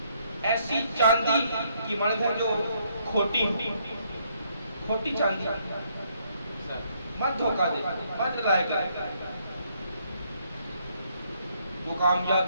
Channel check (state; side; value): inverted; both; correlation -0.71